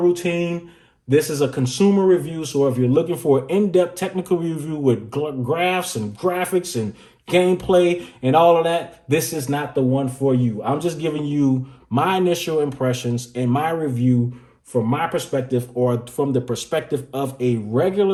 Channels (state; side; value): identical; both; correlation 1.00